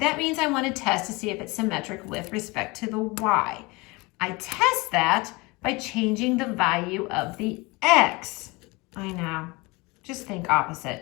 means I want to test to see if it's symmetric with respect to the y. I test that by changing the value of the x. I know, just think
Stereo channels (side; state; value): right; quieter; 25.0 dB